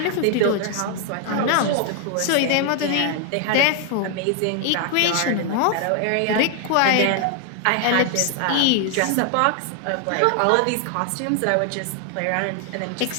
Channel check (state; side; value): different; both; correlation 0.00